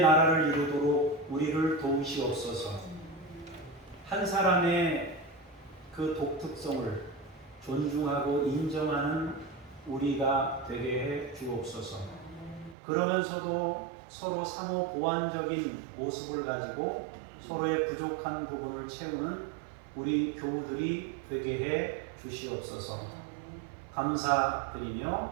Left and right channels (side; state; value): left; drops out; at 12.8 s